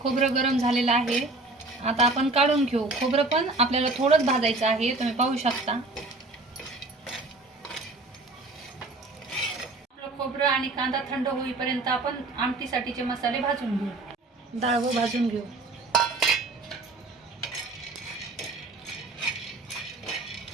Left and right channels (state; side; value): quieter; left; 3.2 dB